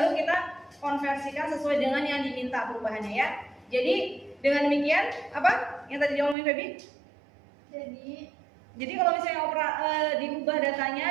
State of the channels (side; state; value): left; drops out; at 6.4 s